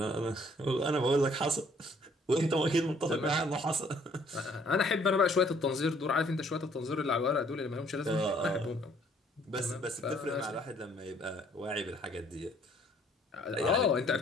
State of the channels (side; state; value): both; normal; correlation 0.62